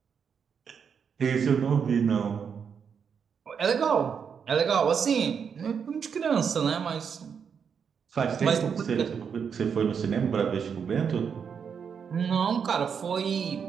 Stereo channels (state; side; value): quieter; left; 6.8 dB